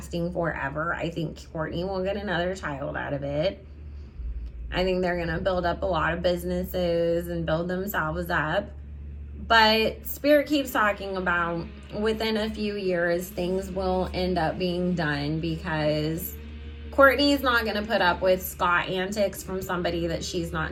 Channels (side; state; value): both; identical; correlation 1.00